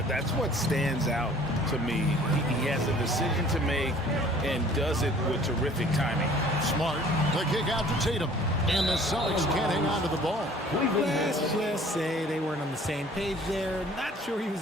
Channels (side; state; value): both; normal; correlation 0.51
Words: what stands out to me. He has a decision to make and does it with terrific timing. Smart. The kick out to Tatum. And the Celtics can't hang on to the ball. Let's just say they weren't on the same page there. Not sure he was